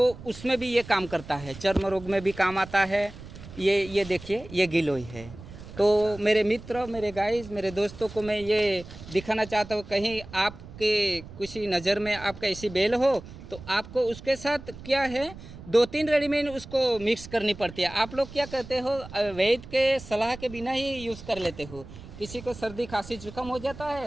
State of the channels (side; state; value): right; noise; rumble, 15 dB below the sound